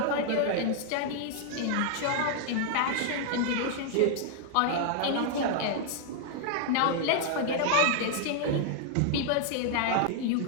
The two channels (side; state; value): both; different; correlation 0.00